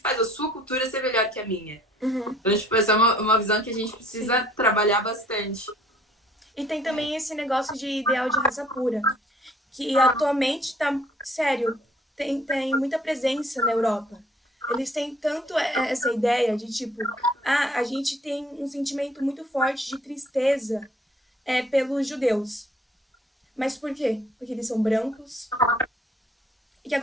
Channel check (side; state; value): both; normal; correlation 0.59